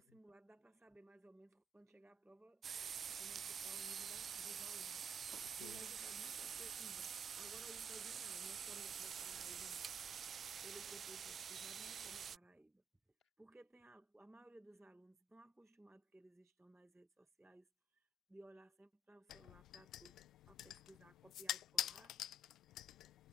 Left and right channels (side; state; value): both; normal; correlation 0.69